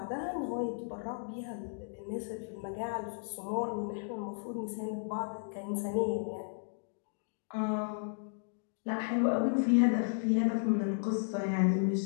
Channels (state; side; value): silent; right; digital silence